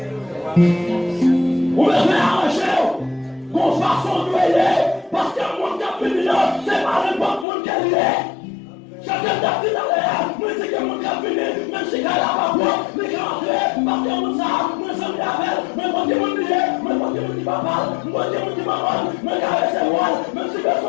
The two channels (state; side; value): drops out; right; at 7.5 s